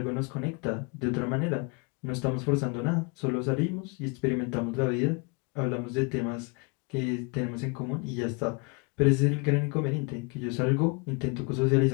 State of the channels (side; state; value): right; quieter; 30.6 dB